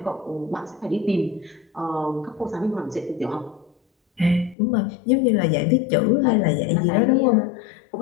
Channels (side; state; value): right; drops out; at 4.5 s